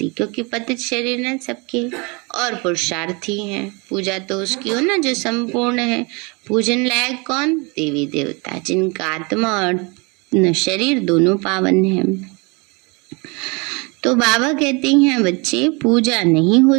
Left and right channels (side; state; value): left; quieter; 29.5 dB